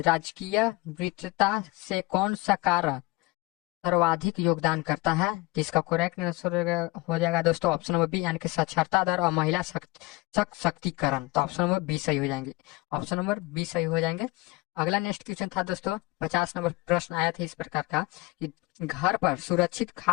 वृद्धता से कौन सा कारक सर्वाधिक योगदान करता है, जिसका करेक्ट आंसर हो जाएगा दोस्तों ऑप्शन नंबर बी, यानी कि साक्षरता दर और महिला सशक्तिकरण। तो ऑप्शन नंबर बी सही हो जाएंगे, ऑप्शन नंबर बी सही हो जाएंगे। अगला नेक्स्ट क्वेश्चन था दोस्तों, 50 नंबर प्रश्न आया था इस प्रकार का कि घर पर सुरक्षित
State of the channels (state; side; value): quieter; right; 22.6 dB